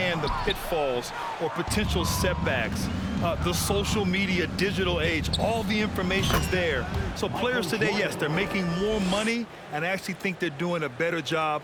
the pitfalls or potential setbacks. The social media, digital age, all the information's there. So players today, yes, they're making more money, and I actually think they're doing a better job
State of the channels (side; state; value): both; identical; correlation 1.00